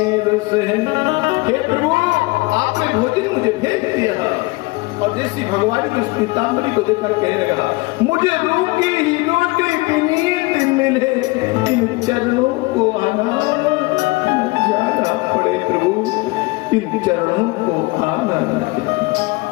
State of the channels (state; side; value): quieter; right; 23.7 dB